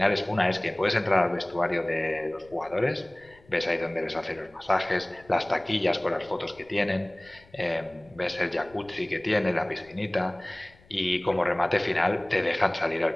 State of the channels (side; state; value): left; noise; rumble, 27 dB below the sound